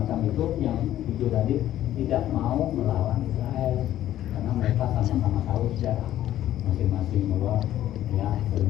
itu yang 7 tadi tidak mau melawan Israel karena mereka sama-sama tahu sejarah masing-masing bahwa ya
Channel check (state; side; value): quieter; right; 12.7 dB